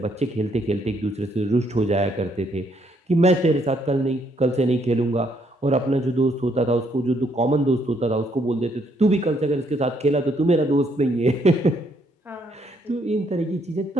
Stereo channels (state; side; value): normal; both; correlation 0.71